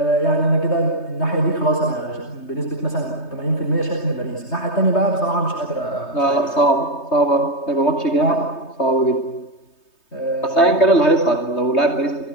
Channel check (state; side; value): late; right; 3.2 ms